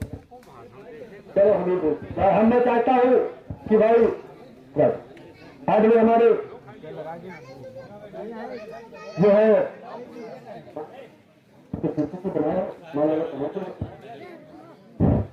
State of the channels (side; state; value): both; identical; correlation 1.00